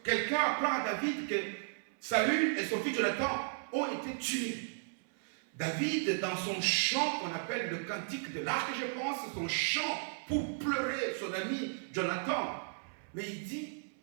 quelqu'un apprend à David que Saül et son fils Jonathan ont été tués. David, dans son chant qu'on appelle le cantique de l'arc, je pense, son chant pour pleurer son ami Jonathan, mais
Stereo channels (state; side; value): silent; left; 55 dB below the other